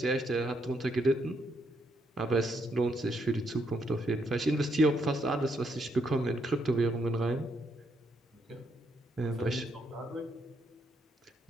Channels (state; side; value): normal; both; correlation 0.75